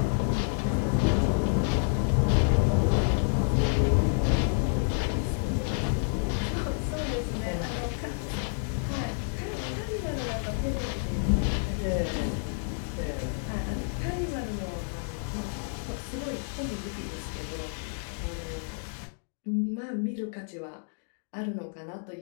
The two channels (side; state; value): right; silent; 58 dB below the other